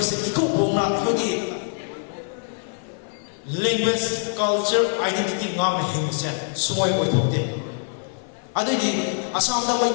से इको बोना अखोगी language, culture, identity ngam himse soy othokte adigi asam da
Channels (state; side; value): silent; right; 56 dB below the other